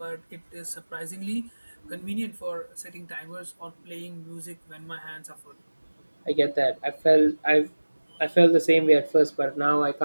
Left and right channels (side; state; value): both; inverted; correlation -1.00